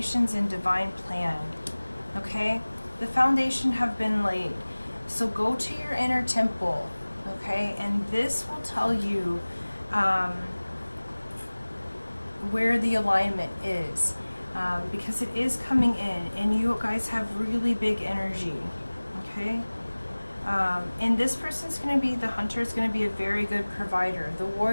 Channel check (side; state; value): both; inverted; correlation -1.00